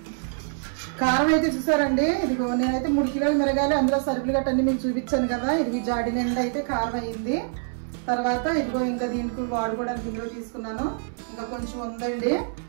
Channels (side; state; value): left; silent; 61 dB below the other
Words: కారం అయితే చూసారండి. ఇదిగో నేనైతే 3 కిలోలు మిరగాయలు, అందులో సరుకులు గట్ట అన్ని మీకు చూపించాను కదా. ఇది జాడి నిండా అయితే కారం అయింది. తర్వాత ఇదిగో ఇంకా దీనికి వాడుకోవడానికి ఇందులో తీసుకున్నాను. ఇంకా కొంచెం ఉందండి.